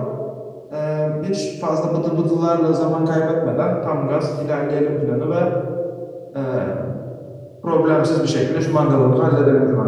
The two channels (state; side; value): identical; both; correlation 1.00